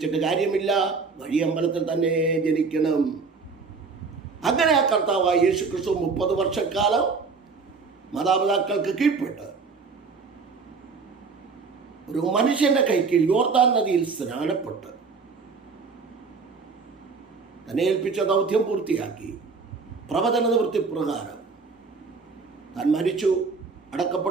കാര്യമില്ല, വഴിയമ്പലത്തിൽ തന്നെ ജനിക്കണം. അങ്ങനെ ആ കർത്താവായ യേശു ക്രിസ്തു 30 വർഷക്കാലം മാതാപിതാക്കൾക്ക് കീഴ്പ്പെട്ട് ഒരു മനുഷ്യന്റെ കൈക്കീഴിൽ യോർദാൻ നദിയിൽ സ്നാനപ്പെട്ട് തന്നെ ഏൽപ്പിച്ച ദൗത്യം പൂർത്തിയാക്കി. പ്രവചന നിവൃത്തി പ്രകാരം താൻ മരിച്ചു,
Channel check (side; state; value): left; quieter; 4.7 dB